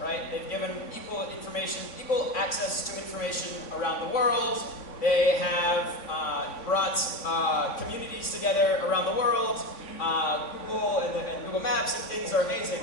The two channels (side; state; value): right; late; 3.5 ms